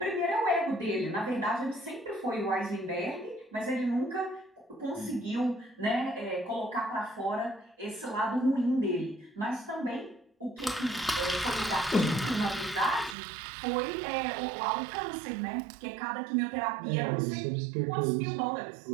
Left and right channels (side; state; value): left; drops out; at 13.2 s